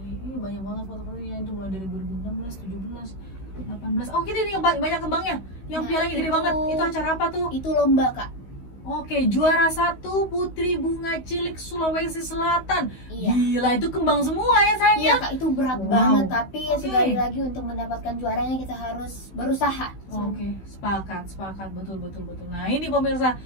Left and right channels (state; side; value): late; right; 16 ms